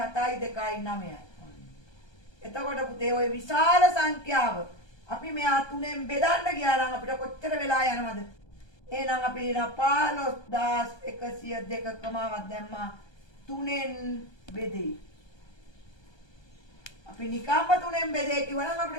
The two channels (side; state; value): right; late; 1.2 ms